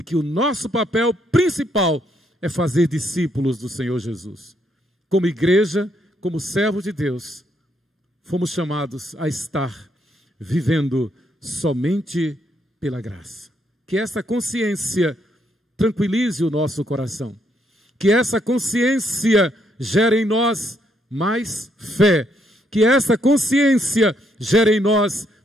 que o nosso papel principal é fazer discípulos do Senhor Jesus. Como igreja, como servos de Deus, fomos chamados a estar vivendo somente pela graça. Que essa consciência tranquilize o nosso coração. Que essa consciência gere em nós mais fé. Que essa consciência gere em nós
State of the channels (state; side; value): normal; both; correlation 0.74